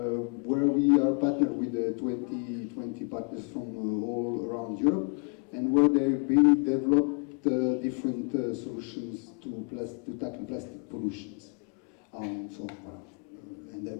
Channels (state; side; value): quieter; right; 36.4 dB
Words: where we are partnered with 20 partners from all around Europe, and where they've been developed different solutions to tackle plastic pollutions. And I'd